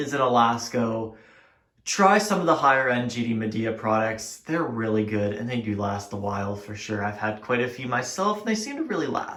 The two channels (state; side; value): identical; both; correlation 1.00